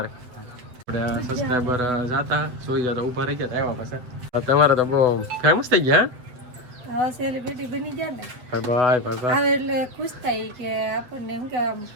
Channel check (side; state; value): left; late; 8.0 ms